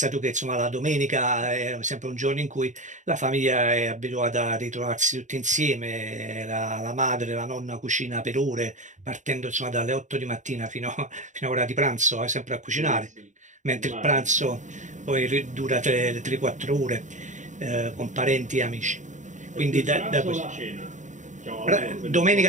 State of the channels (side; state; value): left; late; 0.36 ms